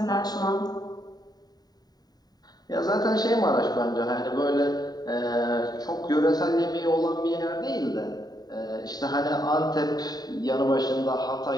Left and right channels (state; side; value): late; right; 0.19 ms